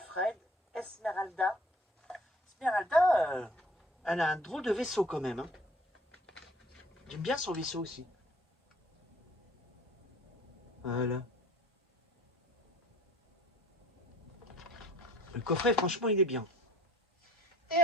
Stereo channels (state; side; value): normal; both; correlation 0.51